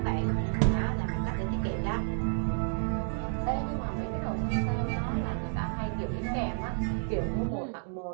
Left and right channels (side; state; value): left; silent; digital silence